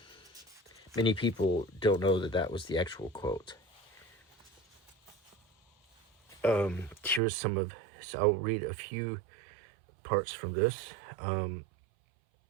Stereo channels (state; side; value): drops out; left; at 7.2 s